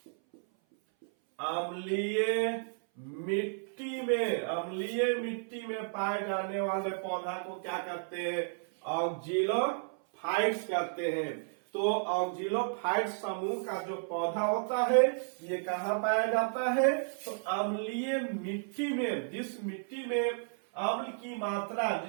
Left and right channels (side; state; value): left; silent; 56 dB below the other